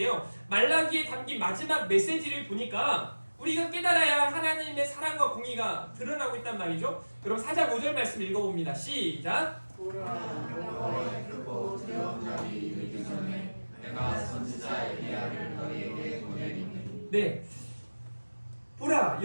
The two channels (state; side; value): inverted; both; correlation -1.00